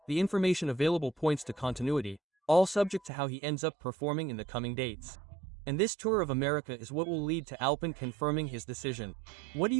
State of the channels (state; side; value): drops out; left; at 3.1 s